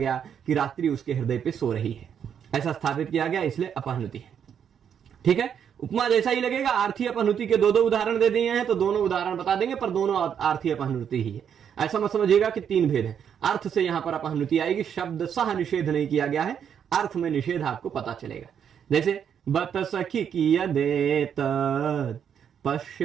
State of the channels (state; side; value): quieter; left; 8.2 dB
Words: कि रात्रि उसके हृदय पे सो रही है, ऐसा स्थापित किया गया, इसलिए अपहनुति है, ठीक है। उपमा जैसा ही लगेगा। आर्थी अपहनुति के दो उदाहरण दे दिए हैं तो दोनों उदाहरण बता देंगे, पर दोनों आर्थी अपहनुति ही है। ऐसा मत समझिएगा कि तीन भेद है। अर्थ से यहां पर अपहनुति आएगी, शब्द सह निषेध नहीं किया गया है, अर्थ में निषेध आपको पता चलेगा। जैसे बत सखी कियदेत